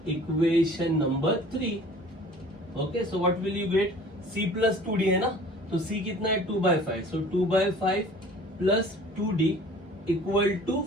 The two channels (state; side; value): normal; both; correlation 0.47